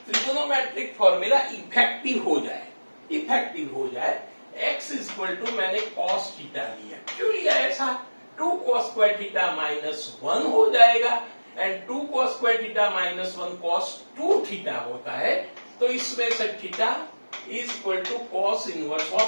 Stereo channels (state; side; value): inverted; both; correlation -1.00